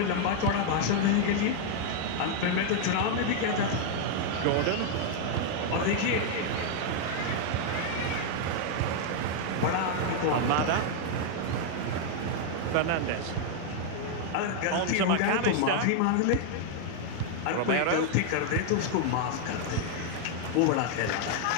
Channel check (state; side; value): different; both; correlation 0.00